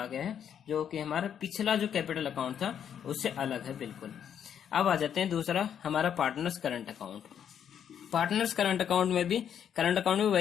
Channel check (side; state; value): right; quieter; 8.8 dB